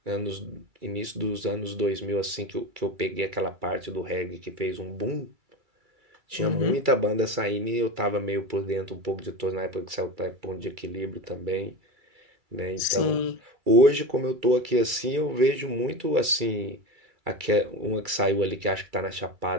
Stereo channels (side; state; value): left; late; 2.3 ms